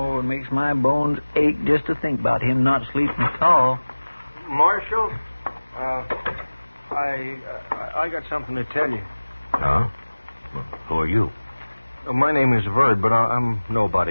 it makes my bones ache just to think about him not sleeping at all. Marshal, I got something to tell you. Oh? Well, who are you? My name is Verd, but I'm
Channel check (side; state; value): both; inverted; correlation -1.00